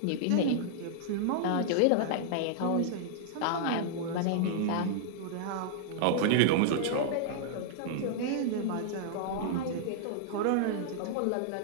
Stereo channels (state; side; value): different; both; correlation -0.01